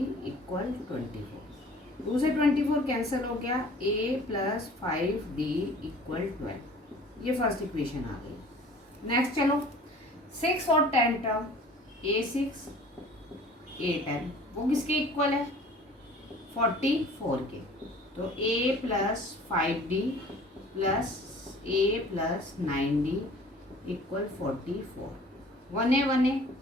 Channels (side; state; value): both; normal; correlation 0.48